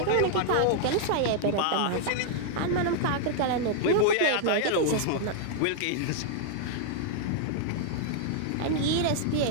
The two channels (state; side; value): different; both; correlation 0.00